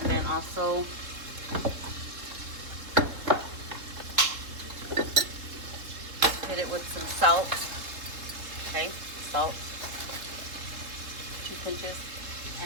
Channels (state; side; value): late; left; 3.7 ms